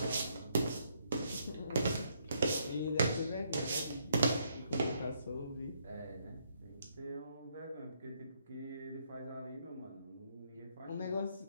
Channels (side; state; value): both; inverted; correlation -0.72